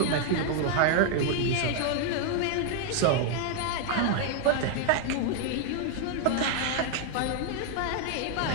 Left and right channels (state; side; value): different; both; correlation 0.00